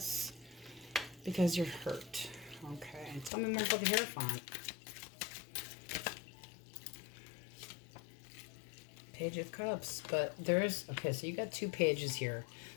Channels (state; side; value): drops out; right; at 3.3 s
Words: Because you're hurt. Okay, tell me more about the Hierophant. Page of Cups, but there's, okay, so you got 2 pages here.